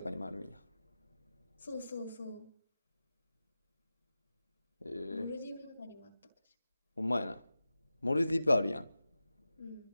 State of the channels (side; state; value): both; inverted; correlation -0.94